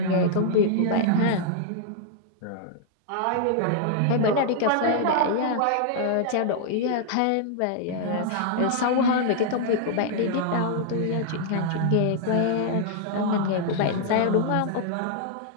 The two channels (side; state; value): both; different; correlation -0.01